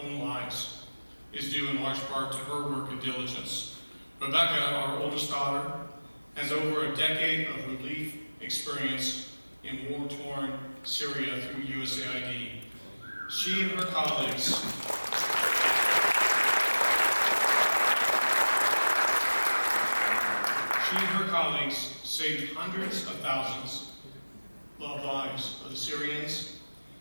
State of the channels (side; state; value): both; inverted; correlation -1.00